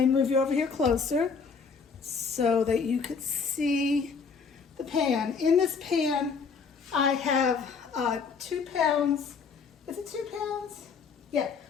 move you over here closer so that you could see the pan. In this pan, I have 2 pounds. Is it 2 pounds? Yeah,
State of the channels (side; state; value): right; quieter; 5.5 dB